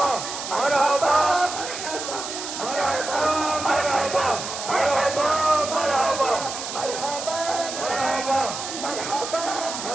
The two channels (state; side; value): noise; right; hiss, 7 dB below the sound